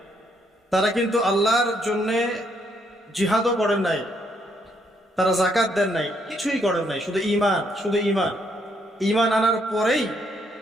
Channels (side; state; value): both; normal; correlation 0.72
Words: তারা কিন্তু আল্লাহর জন্যে জিহাদও করেন নাই, তারা যাকাত দেন নাই, কিছুই করেন নাই, শুধু ঈমান, শুধু ঈমান। ঈমান আনার পরেই